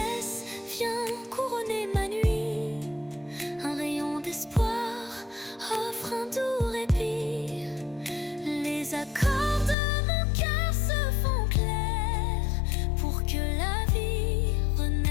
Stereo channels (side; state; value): right; drops out; at 9.8 s